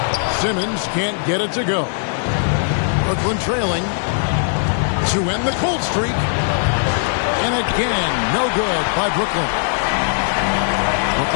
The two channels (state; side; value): silent; right; 67 dB below the other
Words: Simmons can't get it to go. Brooklyn trailing to end the cold streak. And again, no good by Brooklyn.